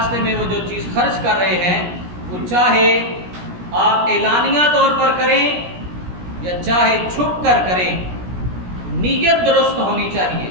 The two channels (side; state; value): left; late; 17 ms